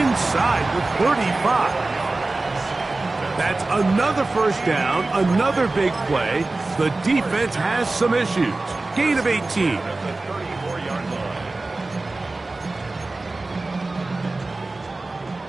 the 35. That's another first down, another big play. The defense has some issues. Gain of 18.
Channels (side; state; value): left; quieter; 3.2 dB